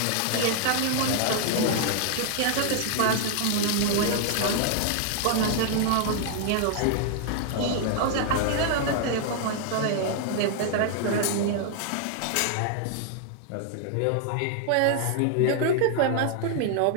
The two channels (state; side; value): different; both; correlation 0.00